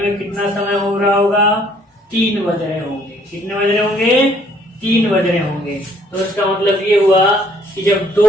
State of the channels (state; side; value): normal; both; correlation 0.63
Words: कितना समय हो रहा होगा, 3 बज रहे होंगे। कितने बज रहे होंगे, 3 बज रहे होंगे। तो इसका मतलब ये हुआ कि जब